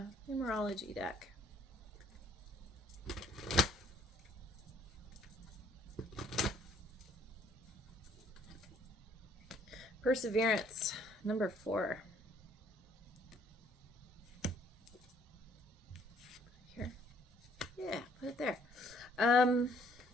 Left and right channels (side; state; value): both; normal; correlation 0.63